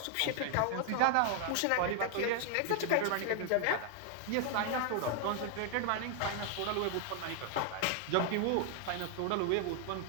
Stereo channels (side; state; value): both; different; correlation 0.00